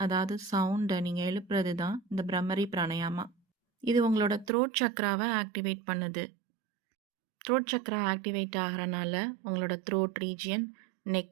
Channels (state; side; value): drops out; left; at 4.5 s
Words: அதாவது சவுண்டை நீங்கள் எழுப்புறது தான் இந்த பிரம்மரி பிராணயாமா. இது உங்களோட த்ரோட் சக்ராவை ஆக்டிவேட் பண்ணுது. த்ரோட் சக்ரா ஆக்டிவேட் ஆகிறனால உங்களோட த்ரோட் ரீஜியன்,